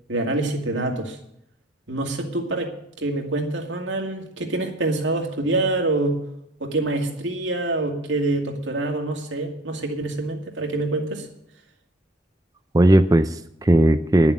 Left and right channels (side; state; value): both; normal; correlation 0.58